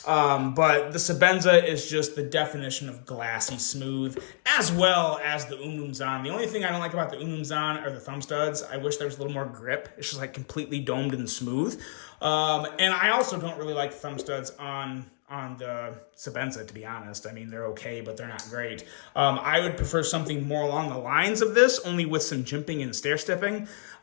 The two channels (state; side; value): silent; right; digital silence